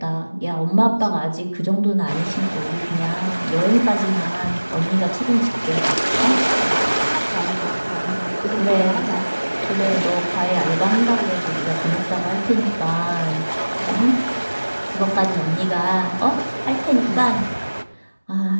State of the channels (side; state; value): both; inverted; correlation -1.00